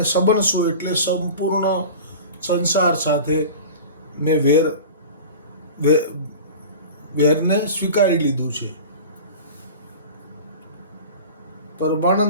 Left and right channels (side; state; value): both; inverted; correlation -0.35